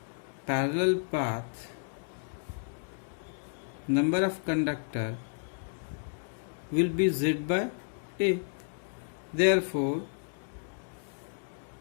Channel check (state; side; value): silent; right; digital silence